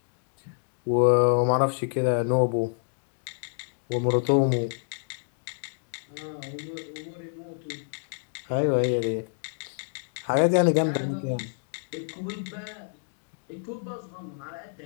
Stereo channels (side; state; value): right; silent; digital silence